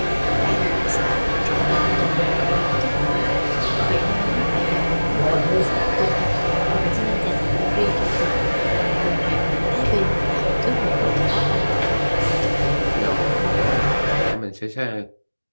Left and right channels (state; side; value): inverted; both; correlation -1.00